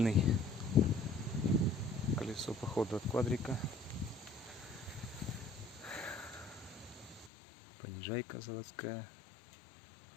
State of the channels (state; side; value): drops out; right; at 7.3 s